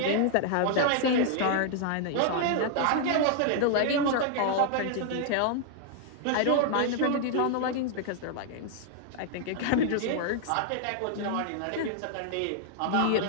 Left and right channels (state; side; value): different; both; correlation 0.00